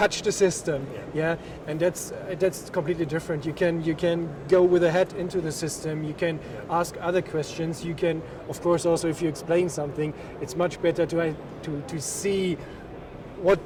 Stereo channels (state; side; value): identical; both; correlation 1.00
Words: the system, and that's completely different. You can go with a head into the system. You can ask other questions. You can, of course, also if you explain something, it's much better to see what